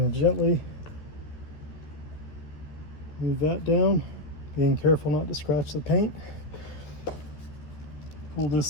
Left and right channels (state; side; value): late; right; 13 ms